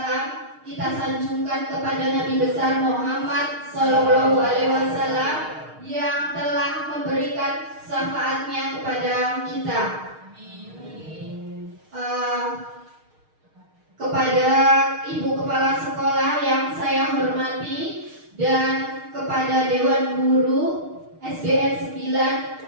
kita sanjungkan kepada Nabi besar Muhammad Sallallahu Alaihi Wasallam yang telah memberikan syafaatnya kepada kita. Kepada Ibu Kepala Sekolah yang saya hormati dan kepada Dewan Guru SDN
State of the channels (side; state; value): left; late; 6.5 ms